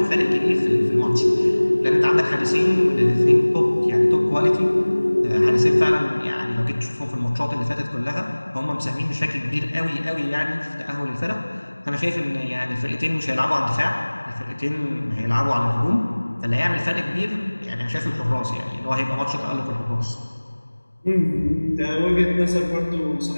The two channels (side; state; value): both; inverted; correlation -1.00